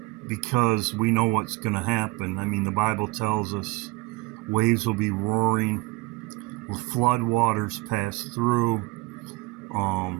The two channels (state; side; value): quieter; left; 23.0 dB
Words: because we know what's going to happen. I mean, the Bible tells us waves will be roaring, flood waters pass through.